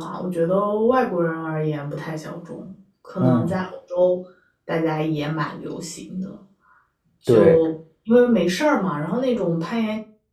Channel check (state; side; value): identical; both; correlation 1.00